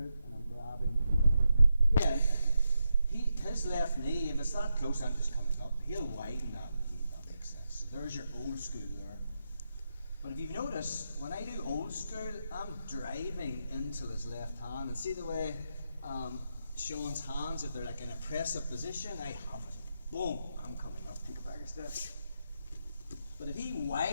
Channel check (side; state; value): both; inverted; correlation -0.85